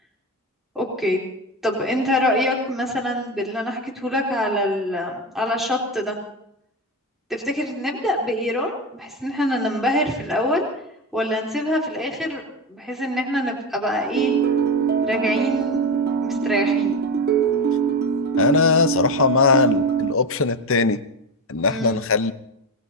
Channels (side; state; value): both; normal; correlation 0.17